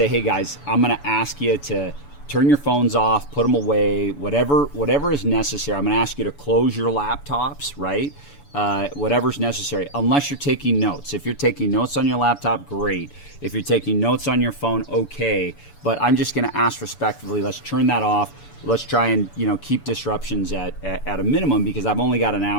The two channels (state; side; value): late; right; 7.0 ms